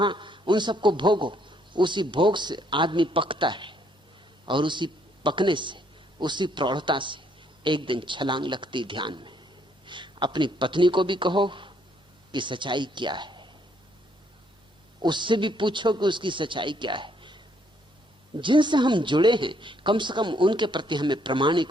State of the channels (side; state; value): both; normal; correlation 0.69